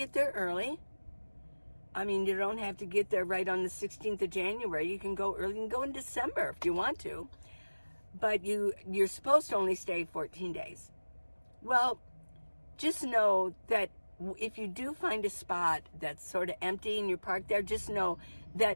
there early. I mean, you don't have to get there right on the 16th of January. You can go early. You can go in December if you want to. But you're supposed to only stay 14 days. Well, just know that if you do find a spot that's sort of empty and you're parked there, just know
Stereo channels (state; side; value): inverted; both; correlation -1.00